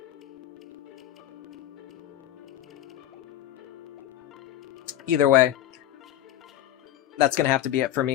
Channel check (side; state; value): right; quieter; 12.9 dB